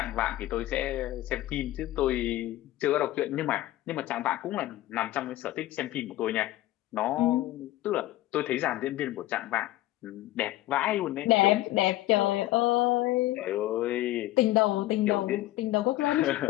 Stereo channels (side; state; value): right; quieter; 16.0 dB